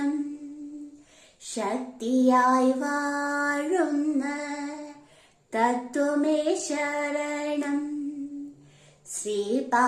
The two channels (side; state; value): both; identical; correlation 1.00